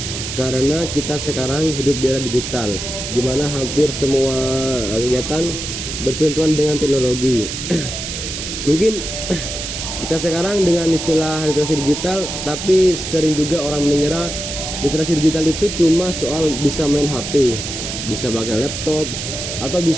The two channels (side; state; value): right; noise; hiss, 6 dB below the sound